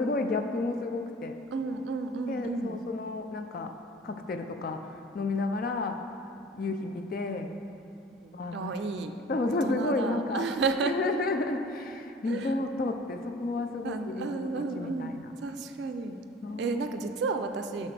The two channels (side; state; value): both; normal; correlation 0.45